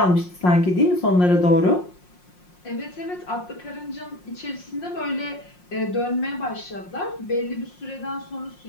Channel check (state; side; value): late; right; 5.6 ms